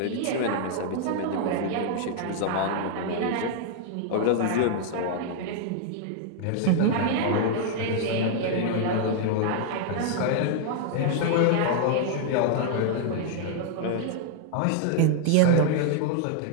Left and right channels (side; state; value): both; different; correlation -0.01